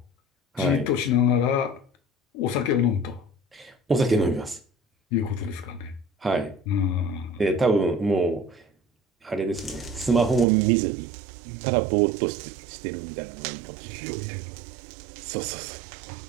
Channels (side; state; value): left; drops out; at 10.5 s